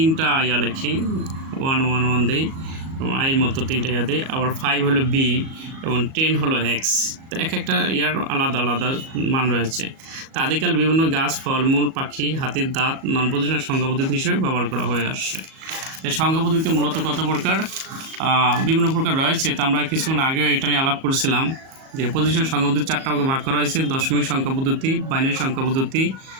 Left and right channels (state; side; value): late; left; 37 ms